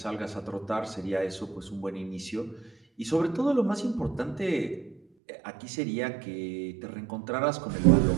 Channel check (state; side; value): drops out; left; at 5.0 s